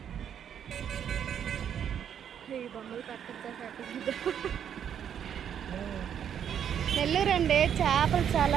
ఈ బొమ్మలు నెల్లూరు అండి, చేపలు చాలా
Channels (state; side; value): quieter; left; 8.8 dB